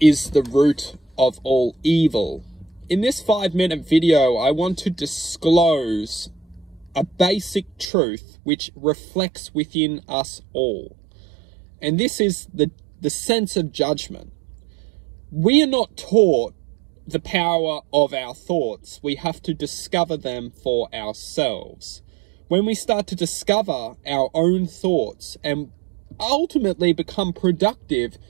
the root of all evil. In this 5-minute video, I want to disclose a basic truth which reflects within us all. And this is the sense of judgment. We are not taught the power of our thoughts. We have to discover them for ourselves. When we start to discover our own thoughts and ultimately become productive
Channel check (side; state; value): left; drops out; at 7.9 s